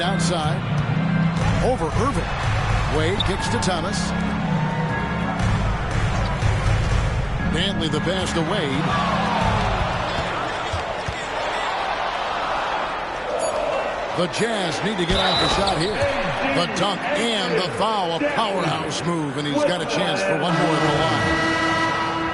outside. Over Irving. Wade kicks to Thomas. Dantley the pass to Wade. The Jazz need to get off a shot here. The dunk and the foul, a powerhouse move, and he's got a chance for one more at the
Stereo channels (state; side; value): identical; both; correlation 1.00